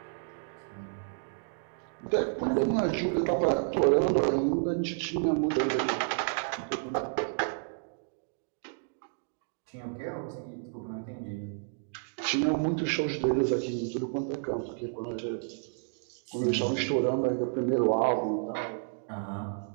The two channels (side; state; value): left; silent; digital silence